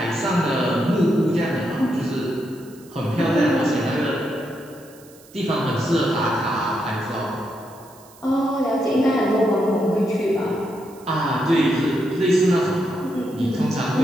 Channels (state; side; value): noise; right; hiss, 25 dB below the sound